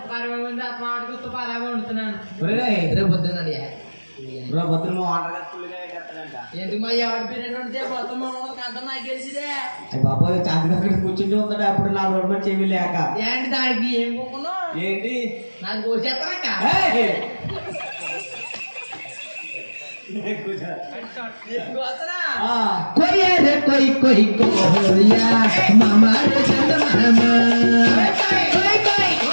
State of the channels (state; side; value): inverted; both; correlation -1.00